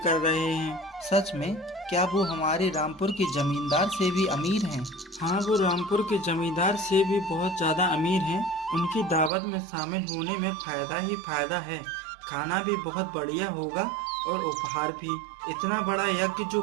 रहे हैं। सच में? क्या वो हमारे रामपुर के जमींदार से भी अमीर हैं? हाँ, वो रामपुर के जमींदार से भी बहुत ज़्यादा अमीर हैं। उनकी दावत में शामिल होने में फ़ायदा ही फ़ायदा है। खाना भी बहुत बढ़िया होगा और उपहार भी। इतना बड़ा यज्ञ जो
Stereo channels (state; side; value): drops out; left; at 9.3 s